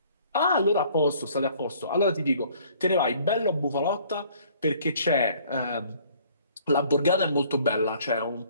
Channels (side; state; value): both; inverted; correlation -0.58